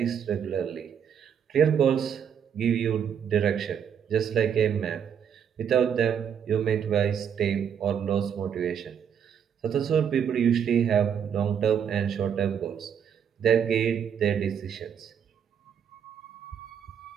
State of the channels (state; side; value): quieter; left; 8.1 dB